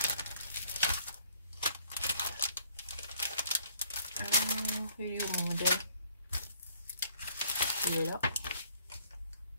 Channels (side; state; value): both; inverted; correlation -0.61